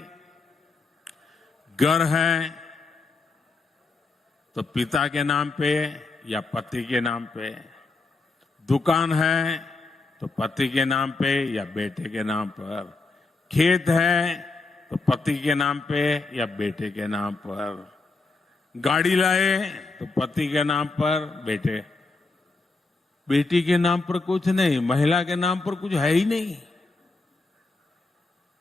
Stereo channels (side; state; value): right; quieter; 3.7 dB